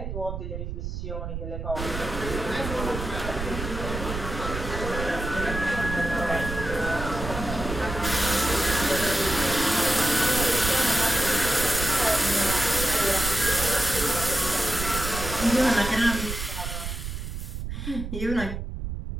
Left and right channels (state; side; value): noise; right; rumble, 6 dB below the sound